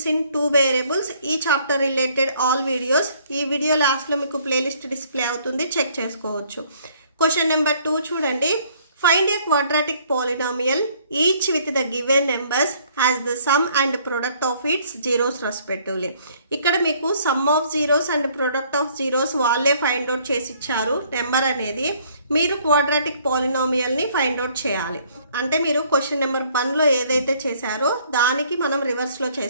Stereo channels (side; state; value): both; inverted; correlation -0.61